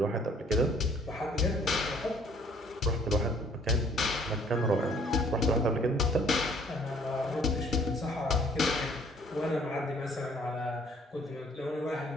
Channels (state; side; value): normal; both; correlation 0.59